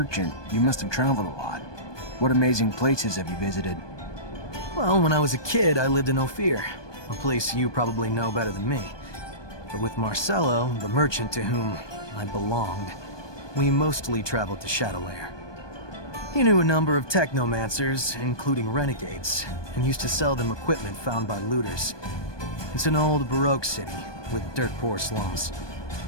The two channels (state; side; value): late; right; 1.2 ms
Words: you must have traveled a lot. What amazing places have you visited? Well, when I was a kid, I lived in Ophir, a place you probably know better than me. But with Marcello, the merchant to whom I belonged, we mostly traveled to Shadowlair. He knew a number of Technomancers, including renegades, and used to sell them equipment found by looters. It's an old Baroque city, with dirt-poor slums.